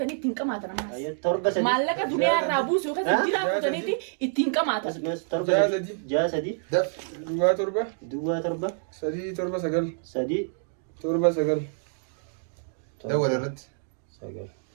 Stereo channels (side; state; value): left; silent; digital silence